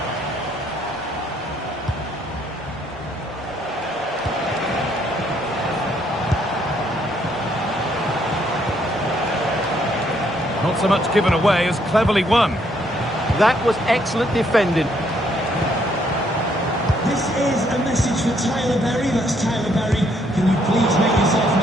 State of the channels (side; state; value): both; normal; correlation 0.70